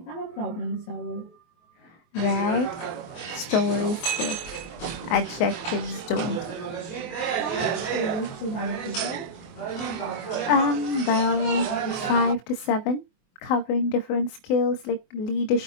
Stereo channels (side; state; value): right; late; 24 ms